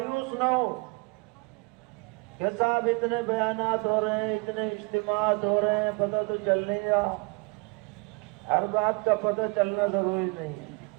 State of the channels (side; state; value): left; quieter; 30.4 dB